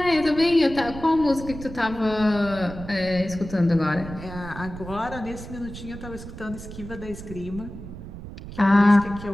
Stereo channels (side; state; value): right; noise; rumble, 12 dB below the sound